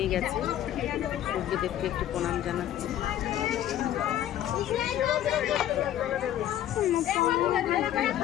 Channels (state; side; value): quieter; right; 11.8 dB